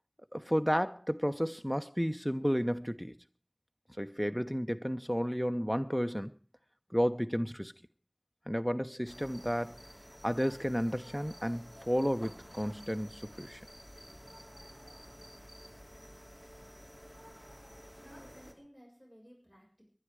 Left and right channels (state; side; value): identical; both; correlation 1.00